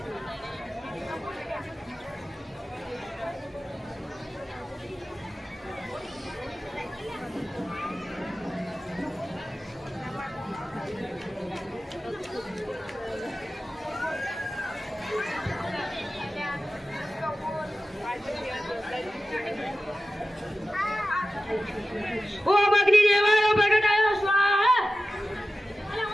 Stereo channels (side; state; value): both; normal; correlation 0.94